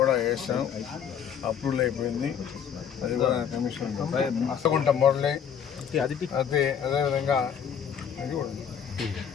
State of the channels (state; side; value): quieter; right; 8.0 dB